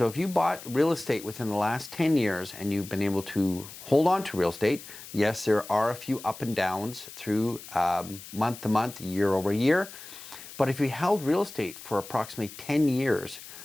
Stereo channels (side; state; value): left; noise; hiss, 15 dB below the sound